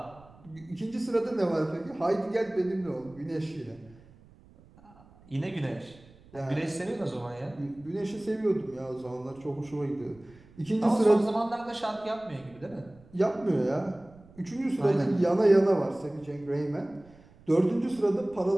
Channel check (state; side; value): noise; right; rumble, 25 dB below the sound